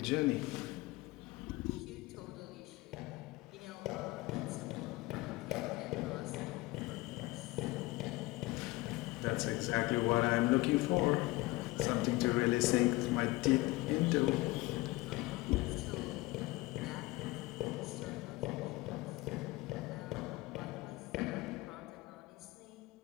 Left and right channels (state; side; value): quieter; right; 21.0 dB